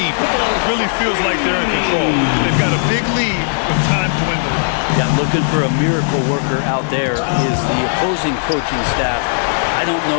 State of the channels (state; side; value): silent; right; digital silence